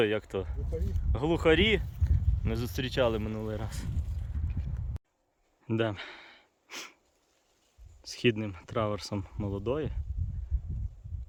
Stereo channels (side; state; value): both; identical; correlation 1.00